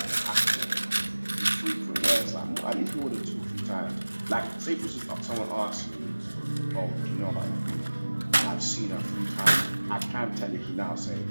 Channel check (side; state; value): both; inverted; correlation -1.00